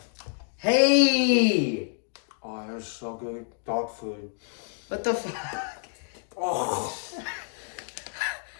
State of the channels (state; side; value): silent; right; 57 dB below the other